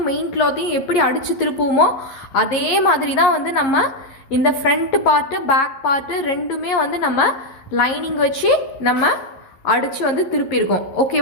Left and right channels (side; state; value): right; late; 11 ms